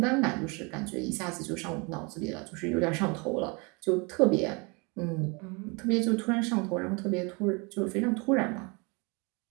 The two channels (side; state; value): left; quieter; 30.0 dB